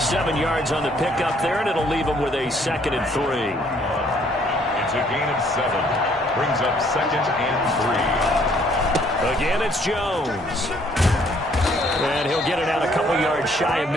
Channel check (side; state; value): both; normal; correlation 0.64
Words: yards on the pickup there, and it'll leave him with a 2nd and 3. It's a gain of 7. Brings up 2nd and 3. Again, it's Jones. And he'll get it out a couple yards shy of